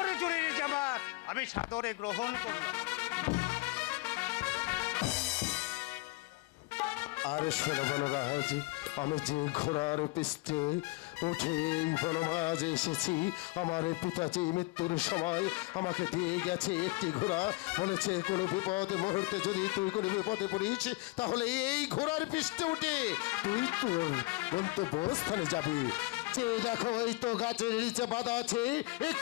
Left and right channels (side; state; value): right; quieter; 24.2 dB